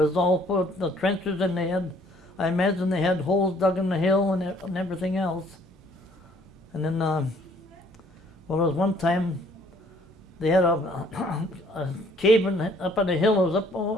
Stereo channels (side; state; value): both; normal; correlation 0.61